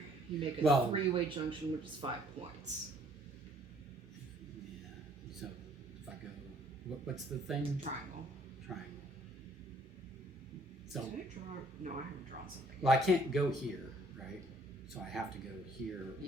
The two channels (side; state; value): both; normal; correlation 0.61